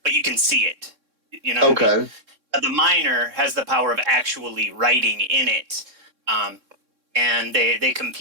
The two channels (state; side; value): late; left; 3.6 ms